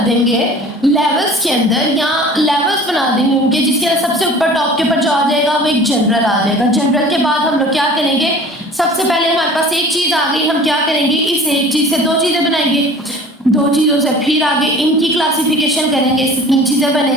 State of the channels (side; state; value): both; normal; correlation 0.44